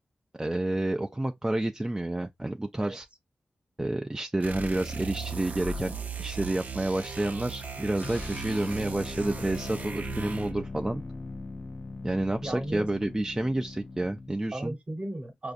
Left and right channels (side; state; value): both; normal; correlation 0.96